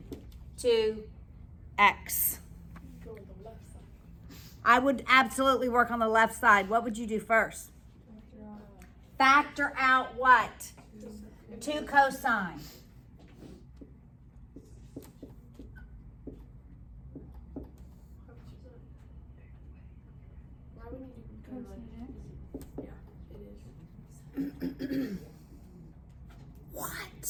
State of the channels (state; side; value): identical; both; correlation 1.00